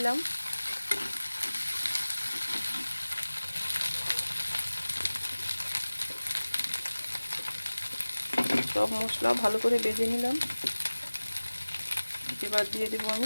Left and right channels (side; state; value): both; inverted; correlation -1.00